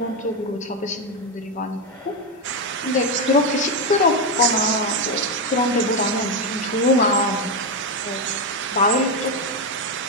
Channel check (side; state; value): both; normal; correlation 0.07